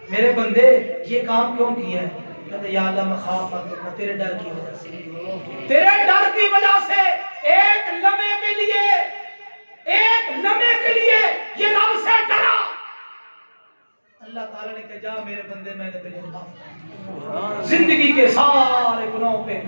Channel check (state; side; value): inverted; both; correlation -1.00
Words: میرے بندے یہ کام کیوں کیا ہے؟ کہتے یا اللہ مخافت، تیرے ڈر کی وجہ سے، تیرے ڈر کی وجہ سے ایک لمحے کے لیے یہ رب سے ڈرا، اللہ تعالیٰ نے کہا جا میرے بندے میں نے تجھے معاف کر، زندگی کے سارے گناہوں پہ